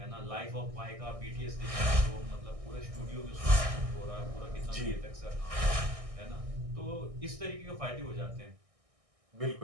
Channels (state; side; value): late; left; 1.6 ms